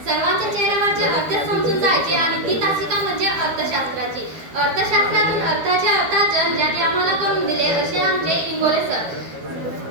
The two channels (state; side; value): late; left; 12 ms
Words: सर्वांच्या चेहऱ्यावरचे अर्थ समजून जायचे आणि ती तासिका म्हणजे अर्थशास्त्राची. अर्थशास्त्रातून अर्थाचे अर्थार्जन ज्यांनी आम्हाला करून दिले असे आमचे इंगोले सर.